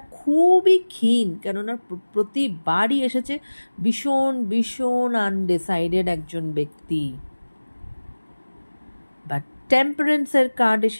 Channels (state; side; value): inverted; both; correlation -1.00